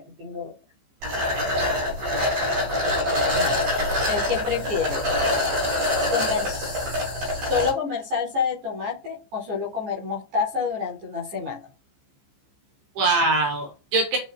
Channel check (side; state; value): left; late; 15 ms